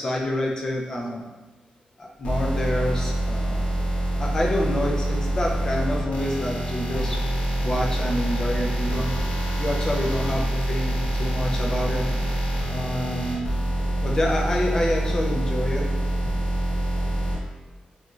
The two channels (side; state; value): both; normal; correlation 0.92